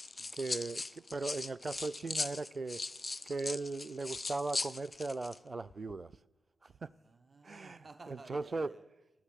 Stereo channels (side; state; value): both; normal; correlation 0.92